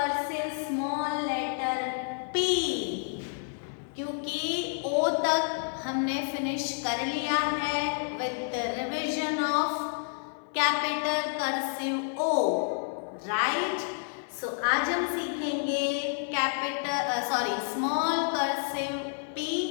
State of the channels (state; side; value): silent; right; 58 dB below the other